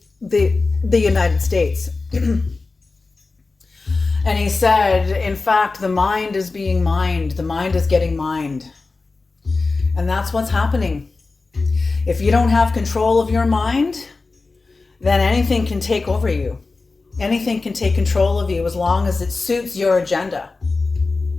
United States. And he said, in fact, the mind is being mined. The mind is getting mined. And that's what's happening. If you don't have control of your mind, then anything can take over you. Anything can take control of you as long as it suits your agenda.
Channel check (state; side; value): quieter; right; 3.8 dB